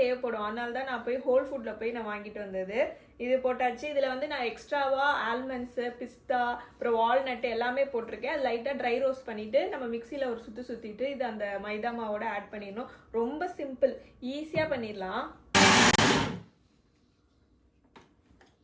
அதனால தான் நான் போய் ஹோல் ஃபுட்டில் போய் நான் வாங்கிட்டு வந்தது. இது போட்டாச்சு. இதில் வந்து நான் எக்ஸ்ட்ராவாக ஆல்மண்ட்ஸு, பிஸ்தா, அப்புறம் வால்நட்டு எல்லாமே போட்டிருக்கேன். அது லைட்டாக ட்ரை ரோஸ்ட் பண்ணிவிட்டு நம்ம மிக்சியில் ஒரு சுற்றிட்டு இது அந்த மைதா மாவோட ஆட் பண்ணிடணும். ரொம்ப சிம்பிள், ஈஸியாக பண்ணிடலாம்.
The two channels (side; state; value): both; identical; correlation 1.00